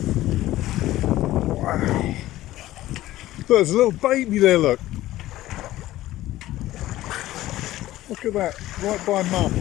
Wow. There's a little baby there, look. Look at that, right by mum.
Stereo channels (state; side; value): quieter; right; 15.5 dB